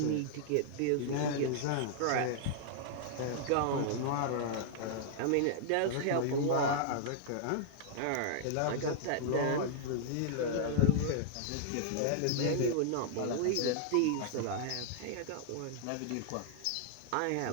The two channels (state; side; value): different; both; correlation -0.01